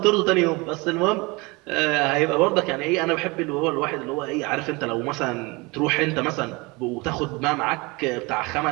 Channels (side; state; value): left; quieter; 25.6 dB